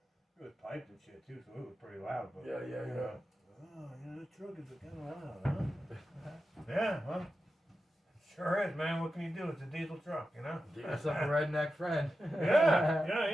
It was piped and shit too, so it was pretty loud. But Yeah. oh, this truck is kind of loud, huh? Yeah, well, sure is, man. What can you do? It's a diesel truck, you know. Get yourself a redneck friend.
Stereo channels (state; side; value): normal; both; correlation 0.91